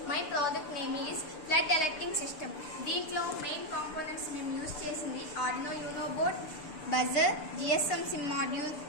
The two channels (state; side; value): late; right; 6.9 ms